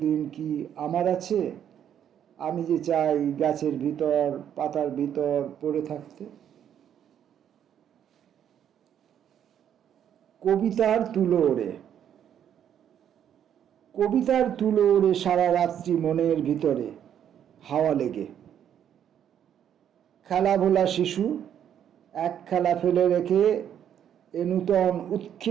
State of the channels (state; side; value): quieter; left; 9.5 dB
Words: কি আমার আছে? আমি যে চাই গাছের ভিতর, পাতার ভিতর পড়ে থাকতে। কবিতার তুলো ওড়ে। কবিতার তুলো ওড়ে সারা রাত্রি মনের ভিতরে হাওয়া লেগে। খেলা ভোলা শিশু এক খেলা ফেলে রেখে এ নূতন